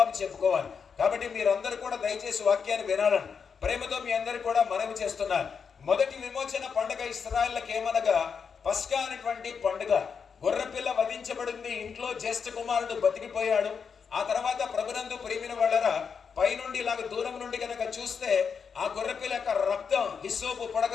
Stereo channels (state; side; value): quieter; right; 6.2 dB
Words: చెప్పుకోవాలి. కాబట్టి మీరందరూ కూడా దయచేసి వాక్యాన్ని వినాలని ప్రేమతో మీ అందరికీ కూడా మనవి చేస్తున్నాను. మొదటి విమోచన పండుగ ఇశ్రాయేలులకు ఏమనగా పస్కా అనేటువంటి పండుగ. గొర్రెపిల్ల వధించబడింది, ఇంట్లో జ్యేష్ఠ కుమారుడు బతికిపోయాడు. ఆ తర్వాత ప్రభునందు ప్రియమైన వాళ్ళరా, పైనుండి ఇలాగ దూరం నుండి కనుక చూస్తే ఆ గొర్రెపిల్ల యొక్క రక్తం హిస్సోపు